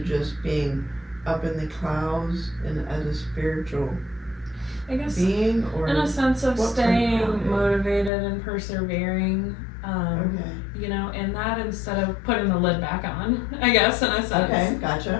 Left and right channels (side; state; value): right; drops out; at 8.1 s